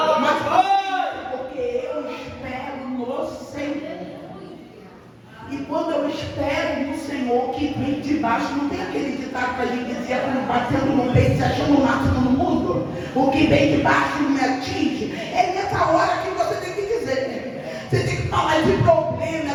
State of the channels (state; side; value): identical; both; correlation 1.00